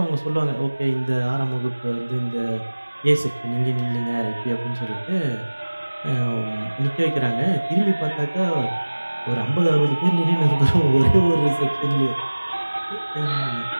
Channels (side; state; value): both; inverted; correlation -1.00